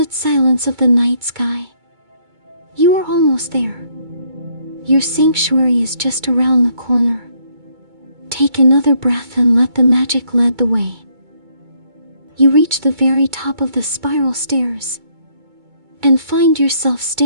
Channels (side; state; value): left; late; 2.2 ms